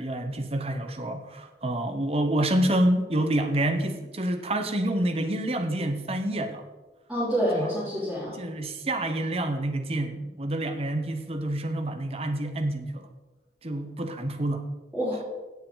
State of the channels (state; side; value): normal; both; correlation 0.71